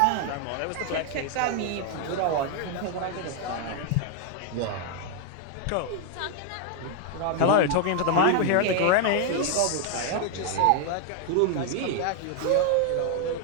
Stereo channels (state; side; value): different; both; correlation 0.00